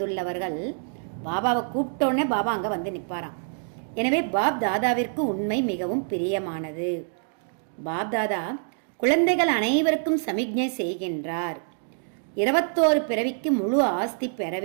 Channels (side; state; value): left; silent; digital silence